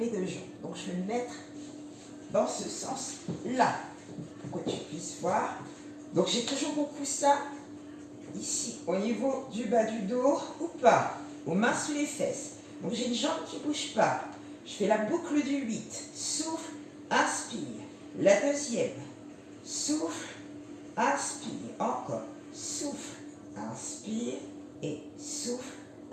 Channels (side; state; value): both; identical; correlation 1.00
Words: deux jambes. Donc, je vais me mettre dans ce sens-là, pour que tu puisses voir. Donc, j'ai toujours mon coussin ici, au niveau du bas du dos, ou pas, aux mains sous les fesses. Donc, j'ai une jambe qui ne bouge pas. Je fais la boucle du 8. Souffle, inspire. La deuxième. Souffle, inspire. Encore. Souffle, inspire. Et souffle,